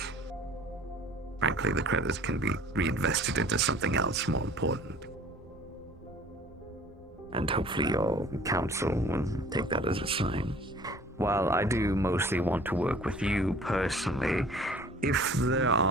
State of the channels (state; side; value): normal; both; correlation 0.50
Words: Frankly, the credits can be reinvested into something else more important. And hopefully your council will take that as a sign. While I do mostly want to work with you personally, if there